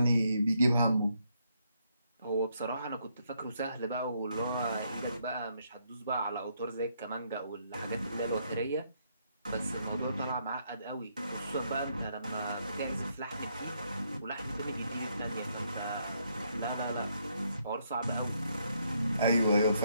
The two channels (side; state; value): both; inverted; correlation -0.74